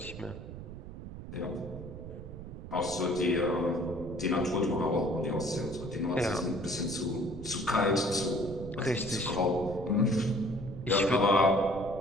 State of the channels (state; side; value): noise; right; rumble, 11 dB below the sound